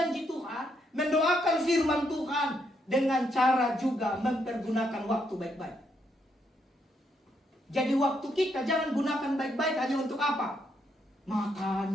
Tuhan, mendoakan firman Tuhan dengan cara juga mempergunakan waktu baik-baik. Jadi waktu kita jangan gunakan baik-baik hanya untuk apa? Makan,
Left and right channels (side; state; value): both; normal; correlation 0.77